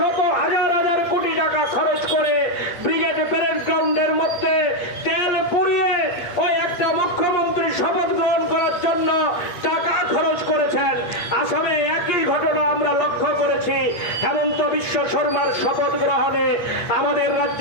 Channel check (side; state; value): right; late; 8.3 ms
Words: হাজার হাজার কোটি টাকা খরচ করে ব্রিগেড প্যারেড গ্রাউন্ডের মধ্যে তেল পুড়িয়ে ওই একটা মুখ্যমন্ত্রী শপথ গ্রহণ করার জন্য টাকা খরচ করেছেন। আসামে একই ঘটনা আমরা লক্ষ্য করেছি। হেমন্ত বিশ্ব শর্মার শপথ গ্রহণে আমাদের